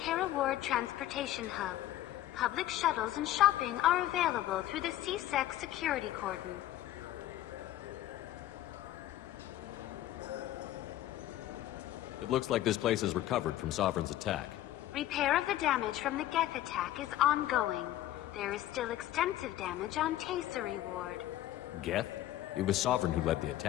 Ward Transportation Hub. Public shuttles and shopping are available through the CSEC security cordon. It looks like this place is recovered from Sovereign's attack. Repair of the damage from the Geth attack is ongoing. There is still extensive damage on Tasery Ward. Geth? It was Sovereign who led the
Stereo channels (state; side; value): quieter; right; 13.9 dB